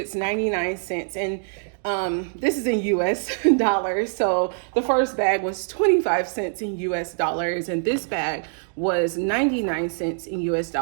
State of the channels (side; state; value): left; silent; 63 dB below the other